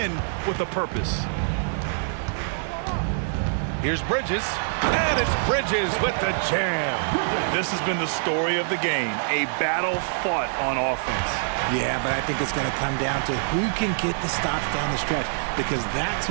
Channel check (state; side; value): silent; left; digital silence